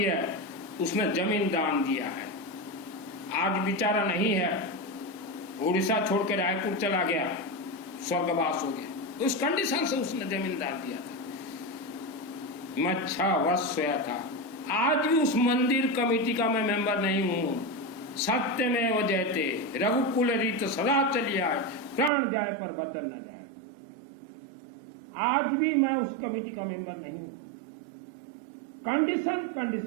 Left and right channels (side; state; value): left; drops out; at 22.1 s